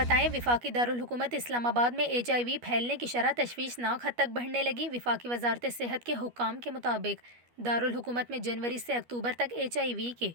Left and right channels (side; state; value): left; late; 12 ms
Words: وفاقی دارالحکومت اسلام آباد میں HIV پھیلنے کی شرح تشویشناک حد تک بڑھنے لگی۔ وفاقی وزارت صحت کے حکام کے مطابق دارالحکومت میں جنوری سے اکتوبر تک HIV کے